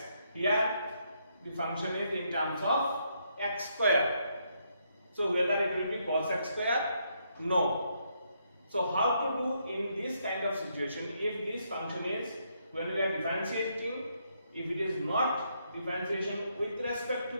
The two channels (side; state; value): both; inverted; correlation -0.75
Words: Here the function is in terms of x square, so whether it will be cos x square? No. So how to do in this kind of situation, if this function is, when we are differentiating, if it is not differentiation with respect to